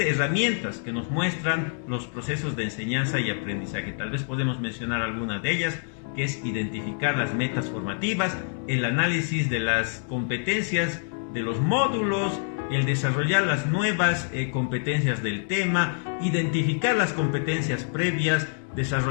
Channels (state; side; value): silent; right; digital silence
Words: herramientas que nos muestran los procesos de enseñanza y aprendizaje. Tal vez podemos mencionar alguna de ellas, que es identificar las metas formativas, el análisis de las competencias de los módulos, el desarrollar las nuevas competencias del tema, identificar las competencias previas,